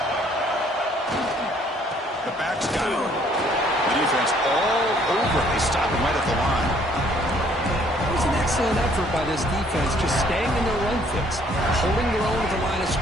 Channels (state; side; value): normal; both; correlation 0.62